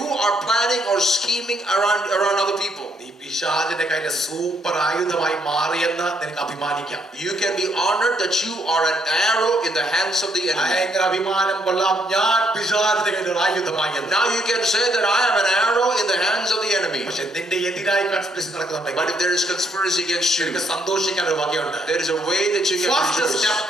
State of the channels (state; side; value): normal; both; correlation 0.72